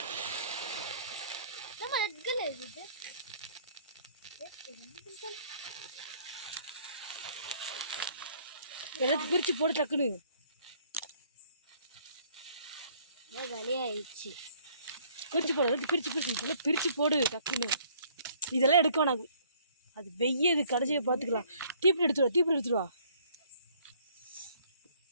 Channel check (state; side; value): inverted; both; correlation -0.60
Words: எல்லாத்தையும் பிரிச்சு போடு டக்குன்னு. காலியாயிடுச்சு. பிரிச்சு போடு, எல்லாத்தையும் பிரிச்சு இதெல்லாம் பிரிச்சு போடு டக்குன்னு. இதெல்லாம் எடுக்க வேணாம், அது வெய்யது. கடைசியை பார்த்துக்கலாம். தீப்பிடி எடுத்துருவா. தீப்பிடி